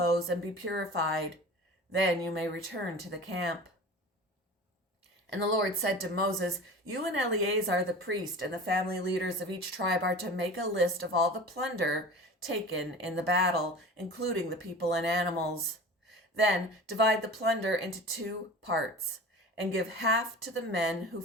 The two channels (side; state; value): both; normal; correlation 0.36